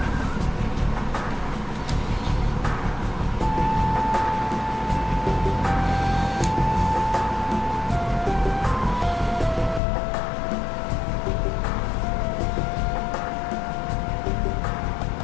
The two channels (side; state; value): right; drops out; at 9.8 s